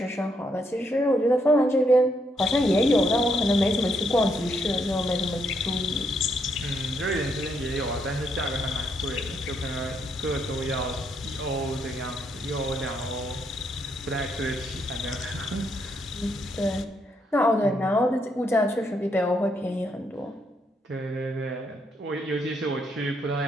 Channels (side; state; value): both; normal; correlation 0.76